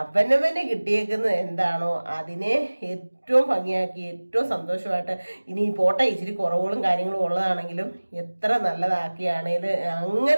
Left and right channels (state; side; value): inverted; both; correlation -1.00